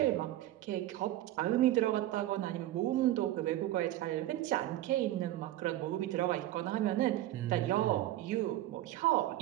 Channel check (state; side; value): quieter; left; 14.6 dB